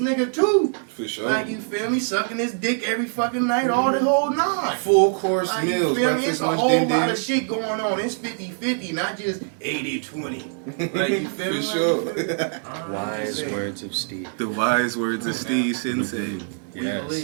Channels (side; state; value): left; silent; 59 dB below the other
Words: too. For sure. Like, you feel me? Sucking his dick every fucking night, all the whole nine. Full course Like, you meals, feel me? breakfast, It's a lunch, whole din lot din. of shit going on. It's 50-50, not just 80-20. Like, you feel me? For Like, sure. you feel me? Wise words of Steve. The wise words of Steve Sensei. We Yes.